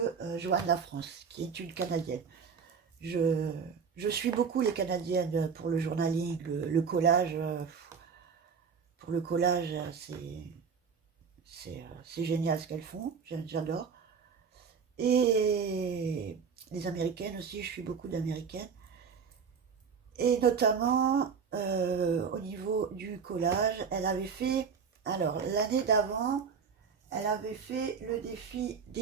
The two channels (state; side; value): quieter; left; 6.1 dB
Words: Joanne Lafrance, qui est une Canadienne. Je, je suis beaucoup les Canadiennes pour le journaling, le collage. Pour le collage, c'est génial ce qu'elles font, j'adore. Et les Américaines aussi, je suis beaucoup d'Américaines. Et notamment au niveau du collage, elle avait fait, alors l'année d'avant, elle avait fait le défi